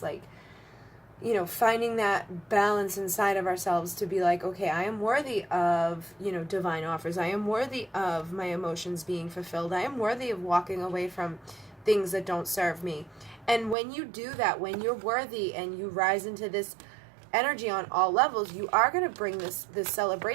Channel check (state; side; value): drops out; left; at 13.8 s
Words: like, finding that balance inside of ourselves to be like, okay, I am worthy of, divine offers. I am worthy of my emotions being fulfilled. I am worthy of walking away from things that don't serve me. And when you do that, when you're worthy and you rise into this energy on all levels, you are going to bring this